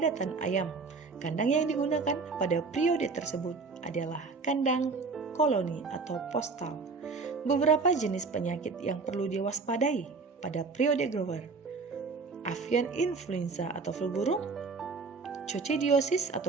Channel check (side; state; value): left; quieter; 4.4 dB